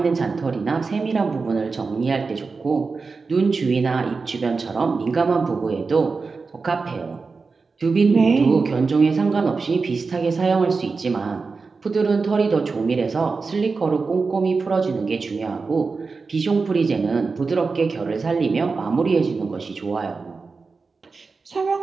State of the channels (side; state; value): left; quieter; 4.4 dB